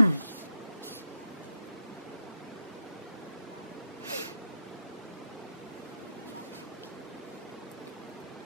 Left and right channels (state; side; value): inverted; both; correlation -0.82